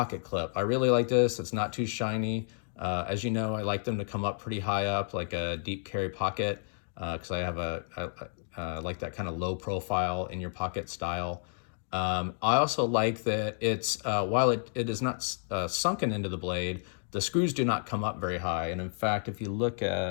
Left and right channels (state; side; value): silent; right; digital silence